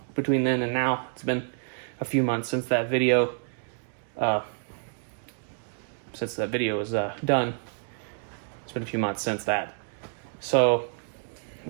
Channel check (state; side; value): silent; left; digital silence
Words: and now. It's been a few months since that video was done. It's been a few months since that. So